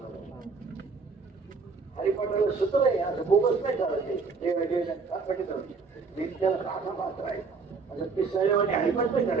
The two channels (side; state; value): left; quieter; 4.7 dB